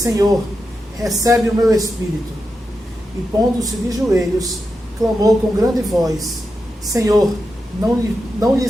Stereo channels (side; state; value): both; normal; correlation 0.88